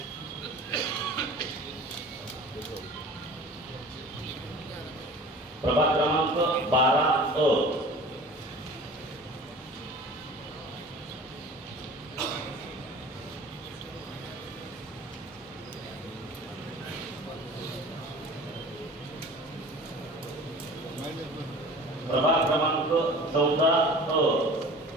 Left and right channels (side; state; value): both; normal; correlation 0.42